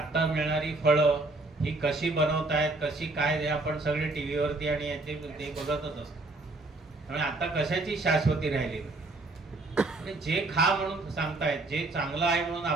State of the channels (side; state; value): left; quieter; 3.0 dB